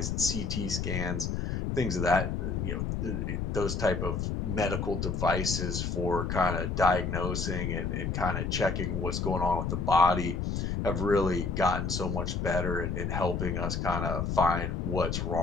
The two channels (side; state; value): left; noise; rumble, 1 dB below the sound